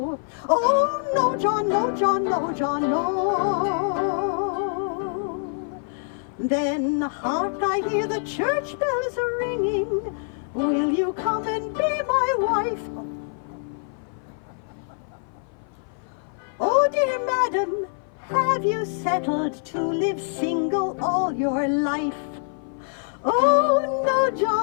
Oh, no, John, no, John, no, John, no. Then, hark, I hear the church bells ringing. Will you come and be my wife? Oh, dear madam, have you settled to live single all your life? Oh, no,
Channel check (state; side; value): silent; right; 56 dB below the other